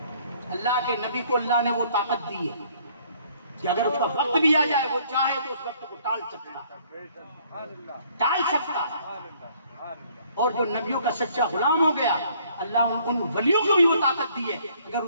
اللہ کے نبی کو اللہ نے وہ طاقت دی ہے کہ اگر اس کا وقت بھی آ جائے وہ چاہے تو اس وقت کو ٹال سکتا۔ اور جو نبیوں کا سچا غلام ہو گیا، اللہ ان ولیوں کو بھی وہ طاقت دی ہے، اگر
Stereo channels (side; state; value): both; inverted; correlation -0.61